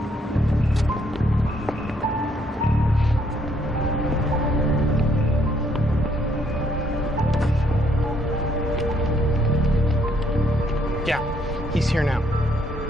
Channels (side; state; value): both; normal; correlation 0.69